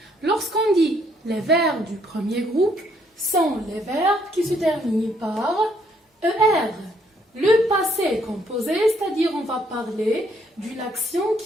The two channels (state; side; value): normal; both; correlation 0.69